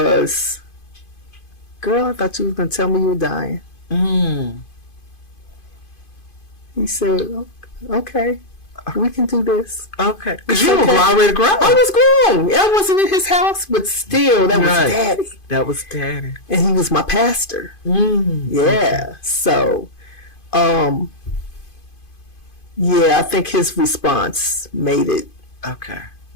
girl, I thought you were going to tell me you were dying. He said, okay, we can do this. Okay. It's Because you were okay. already grown. I was grown. I wasn't in his house, but still, that was Right. daddy. That was daddy. And he was my pastor. Yeah. So, yeah, I think his response made it Okay.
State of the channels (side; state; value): right; late; 2.5 ms